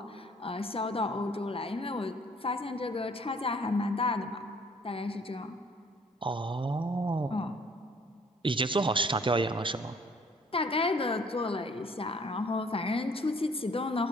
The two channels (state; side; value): normal; both; correlation 0.58